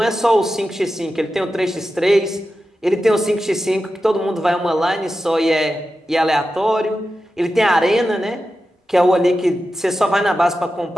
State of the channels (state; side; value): normal; both; correlation 0.91